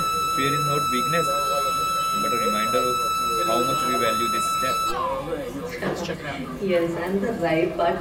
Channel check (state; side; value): identical; both; correlation 1.00